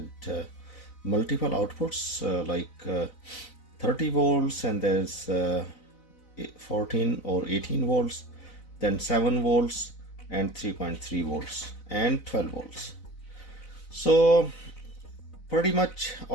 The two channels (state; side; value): late; right; 4.0 ms